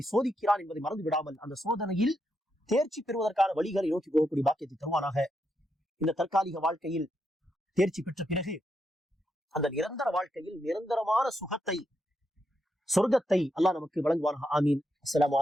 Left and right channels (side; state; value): both; normal; correlation 0.82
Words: சோதிக்கிறான் என்பதை மறந்து விடாமல் அந்த சோதனையில் தேர்ச்சி பெறுவதற்கான வழிகளை நோக்கி போகக்கூடிய பாக்கியத்தை தருவானாக. இந்த தற்காலிக வாழ்க்கையில் தேர்ச்சி பெற்ற பிறகு அந்த நிரந்தர வாழ்க்கையில் நிரந்தரமான சுகத்தை, சொர்க்கத்தை அல்லாஹ் நமக்கு வழங்குவானாக. ஆமீன். அஸ்ஸலாமு